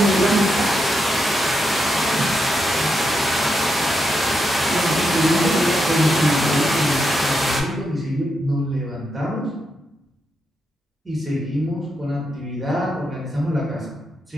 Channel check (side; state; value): both; normal; correlation 0.84